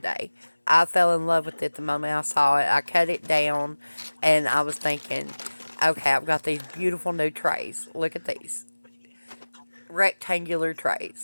I fell in love with it the moment I saw it. I cut it down and I was thinking, okay, I've got these beautiful new trays. Look at these. Rectangular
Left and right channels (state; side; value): inverted; both; correlation -1.00